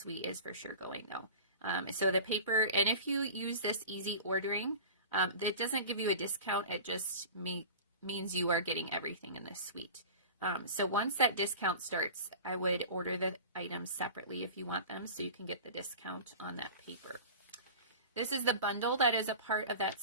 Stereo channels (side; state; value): both; inverted; correlation -0.36